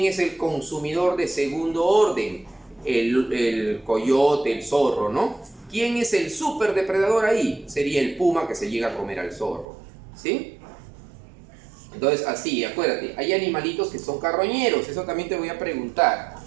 es el consumidor de segundo orden? El coyote, el zorro, ¿no? ¿Quién es el superdepredador ahí? Sería el puma que se llega a comer al zorro, ¿sí? Entonces así, acuérdate, hay animalitos que son carroñeros, eso también te voy a preguntar.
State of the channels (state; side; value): drops out; left; at 9.7 s